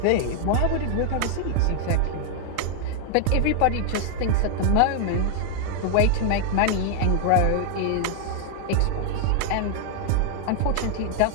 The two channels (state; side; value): different; both; correlation -0.01